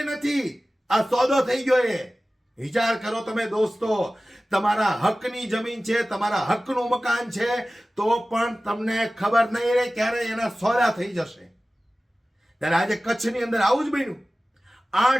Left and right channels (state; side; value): normal; both; correlation 0.97